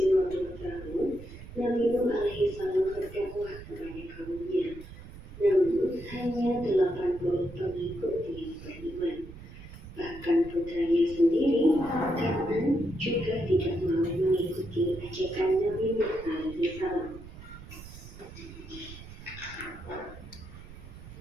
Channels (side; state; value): right; noise; rumble, 15 dB below the sound